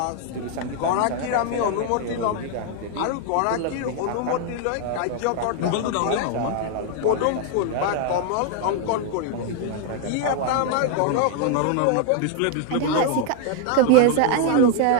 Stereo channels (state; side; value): different; both; correlation 0.00